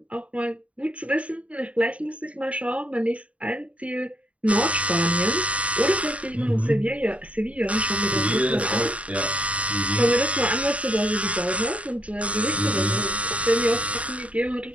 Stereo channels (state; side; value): late; left; 0.065 ms